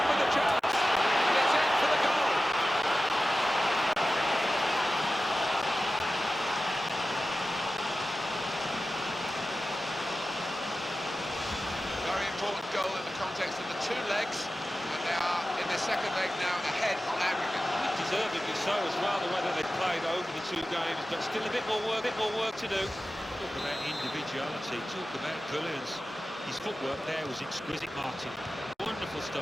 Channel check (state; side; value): normal; both; correlation 0.94